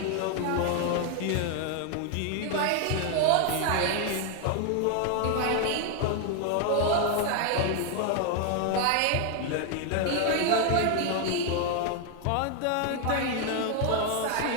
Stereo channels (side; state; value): both; different; correlation 0.00